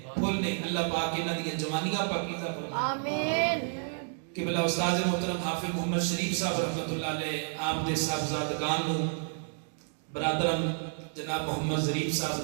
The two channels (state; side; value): silent; left; 57 dB below the other